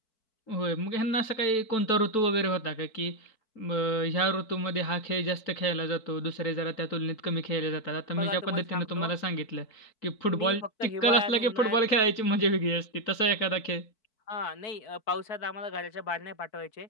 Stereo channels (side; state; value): right; late; 4.5 ms